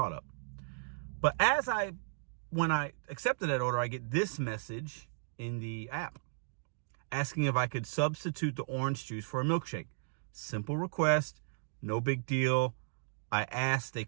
up. But when I accepted that order, I get this message in the app asking if I could substitute the orange juice for a milkshake. Simple request, no big deal. I asked, they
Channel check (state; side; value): silent; left; digital silence